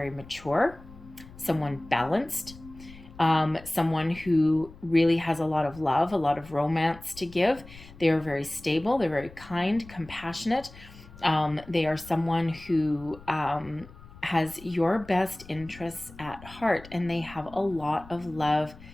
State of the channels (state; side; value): noise; left; rumble, 19 dB below the sound